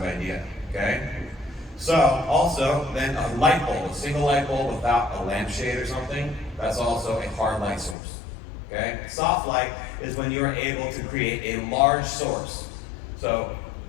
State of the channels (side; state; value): right; drops out; at 8.0 s